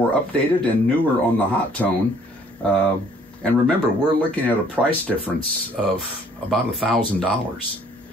updated and newer on the hot tone. And remember, we're looking at a price difference of about $1,000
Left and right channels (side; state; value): both; normal; correlation 0.60